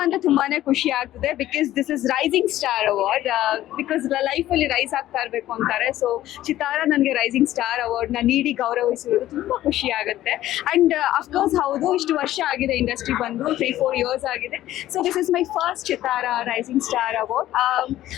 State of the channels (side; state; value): right; quieter; 14.0 dB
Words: ಅಂದ್ರೆ ತುಂಬಾನೇ ಖುಷಿ ಆಗ್ತದೆ, because this is rising star award. Because life ಅಲ್ಲಿ ರೈಸ್ ಆಗ್ತಾ ಇರ್ಬೇಕು ಅಂತಾರೆ. ಸೊ ಚಿತಾರ ನನಗೆ ರೈಸಿಂಗ್ ಸ್ಟಾರ್ ಅವಾರ್ಡ್ ನ ನೀಡಿ ಗೌರವಿಸಿರೋದು ತುಂಬಾ ಖುಷಿ ಆಗುತ್ತೆ. ಅಂಡ್ ಅಫ್ಕೋರ್ಸ್ ಹೌದು, ಇಷ್ಟು ವರ್ಷ ಆಗಿದೆ ಇಂಡಸ್ಟ್ರಿ ಬಂದು 3-4 years ಆಗಿದೆ. So this is my first Chitaara rising star award.